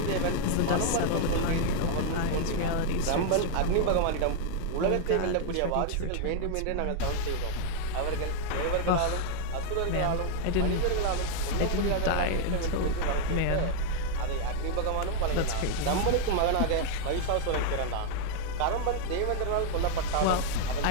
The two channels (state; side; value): different; both; correlation 0.00